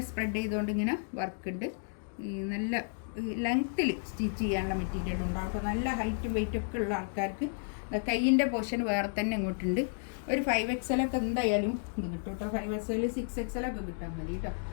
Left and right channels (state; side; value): silent; right; digital silence